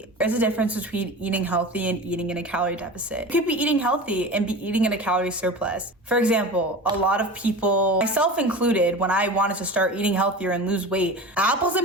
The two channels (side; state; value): both; normal; correlation 0.32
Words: There's a difference between eating healthy and eating in a calorie deficit. You could be eating healthy and be eating in a calorie surplus. For example, a lot of people, myself included, when I wanted to start eating healthier and lose weight, apples